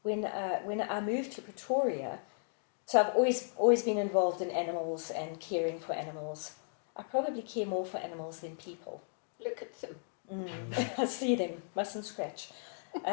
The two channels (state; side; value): silent; right; digital silence